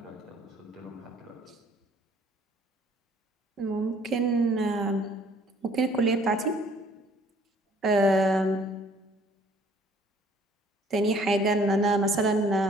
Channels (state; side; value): normal; both; correlation 0.58